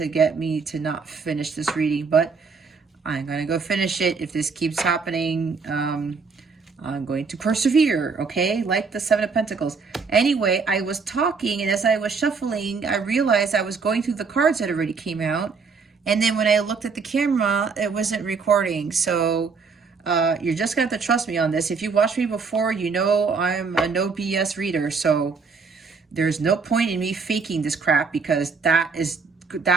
get me to not finish this reading, but I'm going to go finish it. If this keeps happening, I'm going to persevere, okay? Like the Seven of Pentacles. Anyway, I was talking, and as I was shuffling, I realized I was going through the cards that already came out. And then when I looked at the camera, it wasn't recording. So you're just going to have to trust me on this. If you watched me before, you know I'm a no BS reader. So there's no point in me faking this crap, because that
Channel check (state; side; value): quieter; left; 5.0 dB